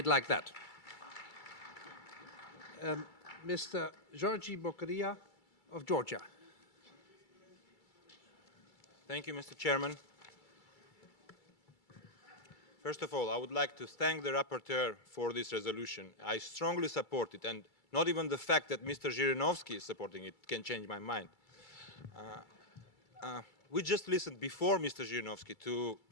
like that. Mr. Georgi Bokaria of Georgia. Thank you, Mr. Chairman. First of all, I would like to thank the rapporteur for this resolution. I strongly support it, and not even the fact that Mr. Zhirinovsky is supporting it can change my mind. We just listened before Mr. Zhirinovsky to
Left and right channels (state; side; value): late; right; 2.3 ms